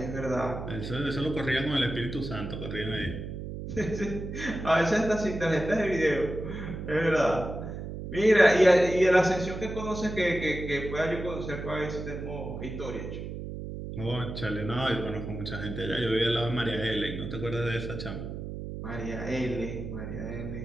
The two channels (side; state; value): right; noise; hum, 7 dB below the sound